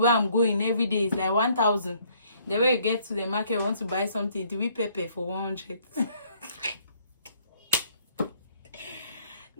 I'm going every day, it's like 1,000. The way you get to the market, you want to buy something, to be pepper for 100.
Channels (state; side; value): inverted; both; correlation -0.64